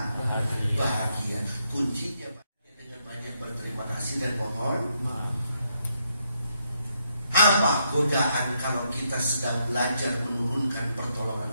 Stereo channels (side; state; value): both; inverted; correlation -0.77